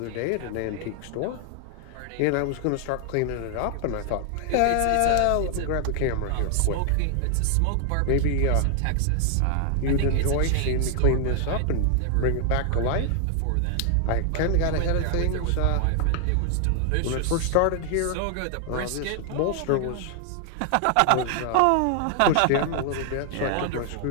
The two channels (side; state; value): both; different; correlation 0.00